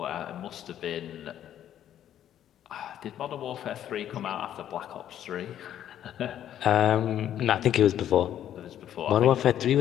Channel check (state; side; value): quieter; right; 10.9 dB